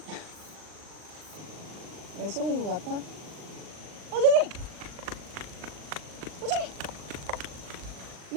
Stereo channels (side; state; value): left; late; 39 ms